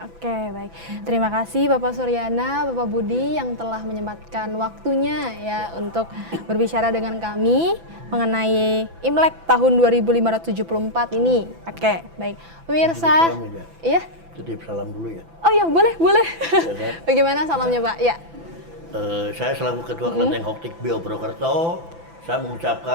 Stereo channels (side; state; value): left; late; 6.0 ms